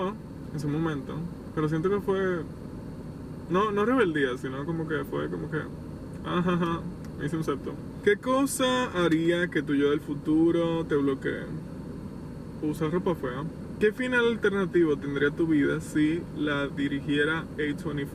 en su momento, pero siento que fue... No rebeldía, sino como que fue como que... me hice un septum. ¿Qué cosa haría que tu yo del futuro te bloquee? Usar ropa fea. ¿Qué final alternativo tendría tu vida si la dirigiera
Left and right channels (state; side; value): identical; both; correlation 1.00